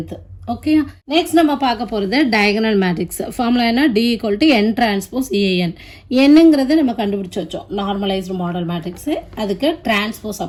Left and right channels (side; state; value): both; identical; correlation 1.00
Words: ஓகே, நெக்ஸ்ட் நம்ம பார்க்க போகிறது டயகனல் மேட்ரிக்ஸ். ஃபார்முலா என்ன? D = n transpose EN. என்னங்கிறது நம்ம கண்டுபிடிச்சி வச்சோம். நார்மலைஸ்டு மாடல் மேட்ரிக்ஸு, அதுக்கு டிரான்ஸ்போஸ்